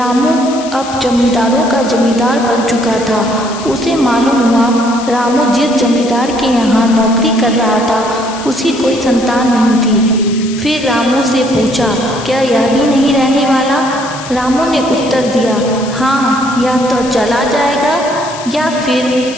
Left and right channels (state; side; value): noise; left; hiss, 14 dB below the sound